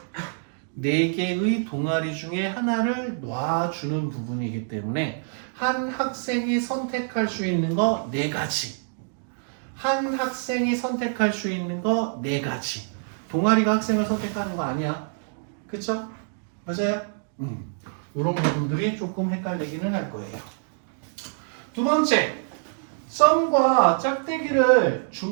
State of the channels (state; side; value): silent; left; digital silence